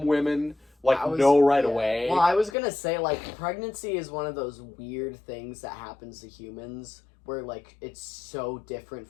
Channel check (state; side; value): drops out; right; at 2.5 s